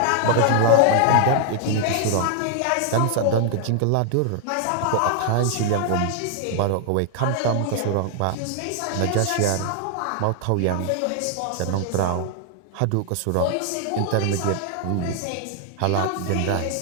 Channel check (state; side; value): different; both; correlation 0.00